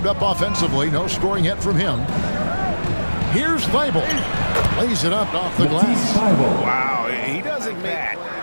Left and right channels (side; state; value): both; inverted; correlation -1.00